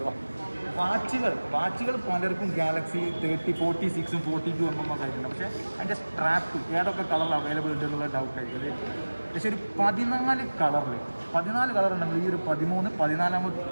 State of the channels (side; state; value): both; inverted; correlation -1.00